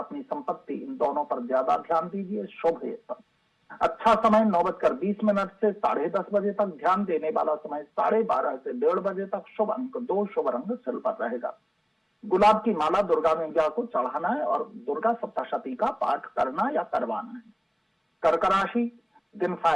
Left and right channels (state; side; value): identical; both; correlation 1.00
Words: संपत्ति इन दोनों पर ज्यादा ध्यान दीजिए। शुभ है सब। अच्छा समय 9:20 से 10:30 बजे तक। ध्यान देने वाला समय 12:30 से 1:30 बजे तक। शुभ अंक 2, शुभ रंग सिल्वर रहेगा। गुलाब की माला दुर्गा मैया को चढ़ाना है और दुर्गा सप्तशती का पाठ करना या करवाना है। कर्क राशि, दिन